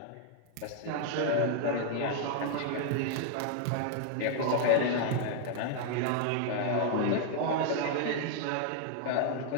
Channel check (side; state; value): both; different; correlation 0.00